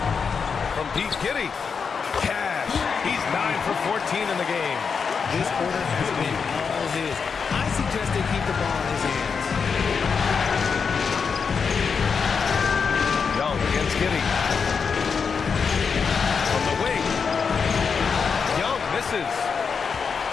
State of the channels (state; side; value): quieter; right; 5.8 dB